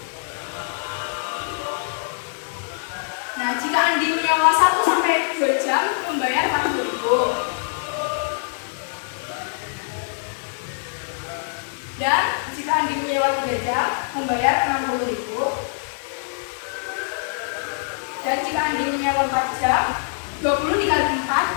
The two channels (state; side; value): silent; right; 55 dB below the other